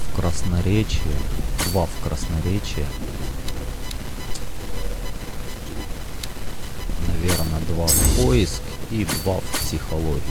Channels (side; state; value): both; identical; correlation 1.00